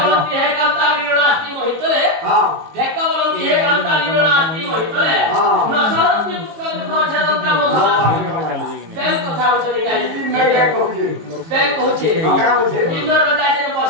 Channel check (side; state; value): left; late; 19 ms